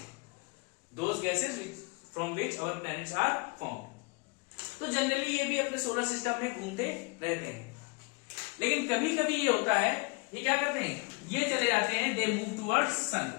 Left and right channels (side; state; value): right; quieter; 29.6 dB